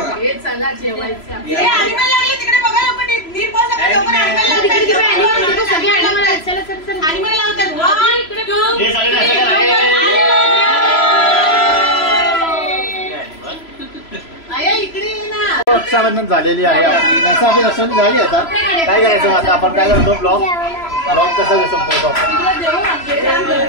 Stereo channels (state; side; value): late; right; 3.0 ms